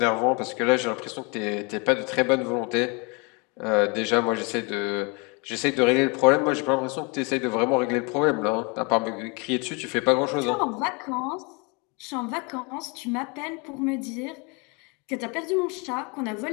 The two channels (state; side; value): quieter; right; 30.8 dB